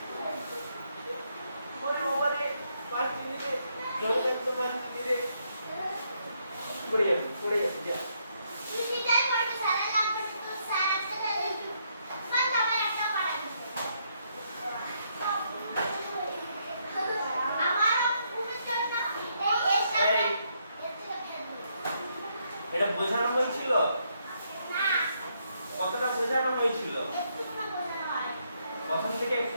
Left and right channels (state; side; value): inverted; both; correlation -0.75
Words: সেটাই পড়বে স্যার, লাগবে তো স্যার আসতে দেবে। স্যার আমার একটা কাটাকুটি। আমার উপর না এই এসটা এই, এটা বোঝানো হয়েছিল? না কতটা বোঝানো হয়েছিল? একটু না বোঝানো হয় প্রথম থেকে